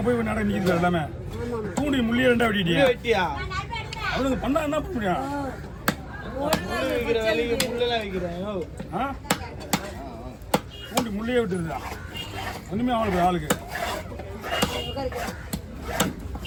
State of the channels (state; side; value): identical; both; correlation 1.00